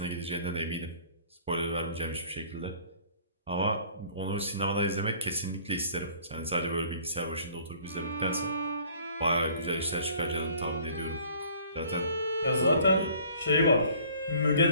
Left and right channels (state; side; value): inverted; both; correlation -0.54